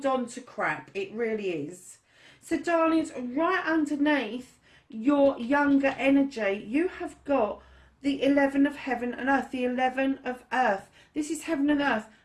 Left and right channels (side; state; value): both; identical; correlation 1.00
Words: on to crap. It really is. So, darlings, right underneath your younger energy, you have got the 11 of heaven and earth, the 11 of earth. This is heaven and earth,